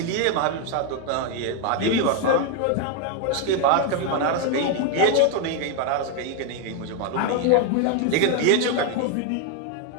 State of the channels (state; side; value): different; both; correlation 0.01